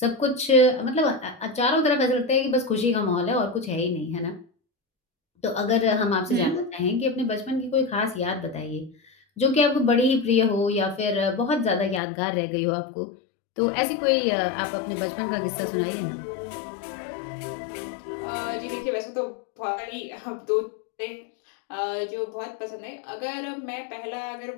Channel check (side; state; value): right; drops out; at 12.0 s